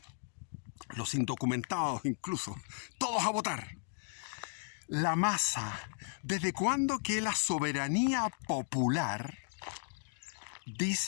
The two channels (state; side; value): silent; right; digital silence